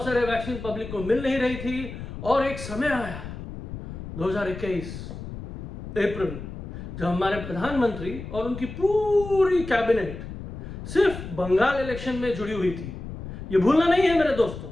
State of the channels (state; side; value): noise; left; rumble, 9 dB below the sound